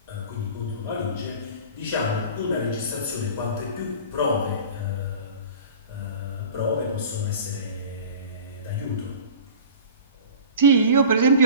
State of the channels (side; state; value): both; inverted; correlation -0.40